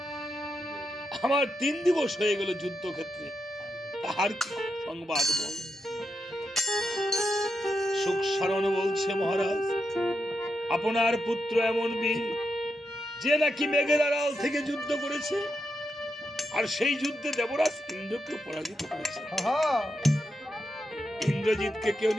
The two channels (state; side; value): normal; both; correlation 0.85